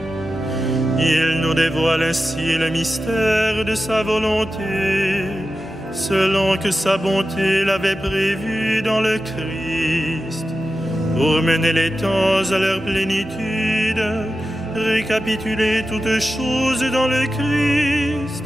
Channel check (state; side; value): normal; both; correlation 0.92